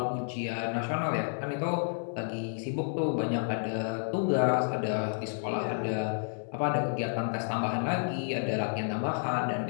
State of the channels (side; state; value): right; silent; 57 dB below the other